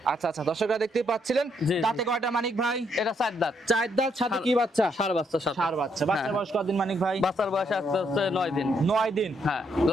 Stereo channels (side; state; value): both; normal; correlation 0.74